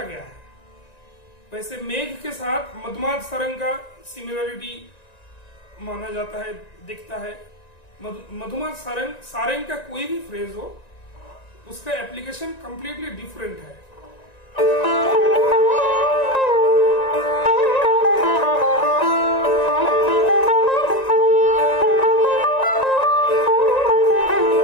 गया है। वैसे मेघ के साथ मधुमाद सारंग का सिमिलरिटी माना जाता है, दिखता है। मधुमाद सारंग का कोई भी फ्रेज हो उसका एप्लीकेशन कंप्लीटली डिफरेंट है।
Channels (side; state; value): right; late; 1.9 ms